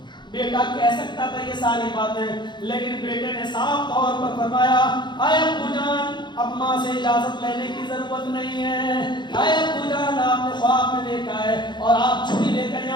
بیٹا کہہ سکتا تھا یہ ساری باتیں، لیکن بیٹے نے صاف طور پر فرمایا اے ابو جان اب ماں سے اجازت لینے کی ضرورت نہیں ہے. اے ابو جان آپ نے خواب میں دیکھا ہے اور آپ چھری لے کر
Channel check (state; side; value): late; right; 0.22 ms